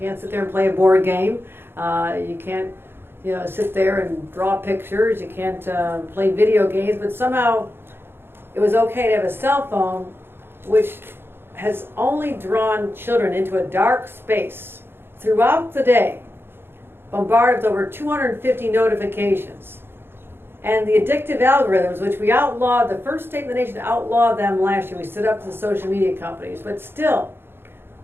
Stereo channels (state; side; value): late; left; 0.11 ms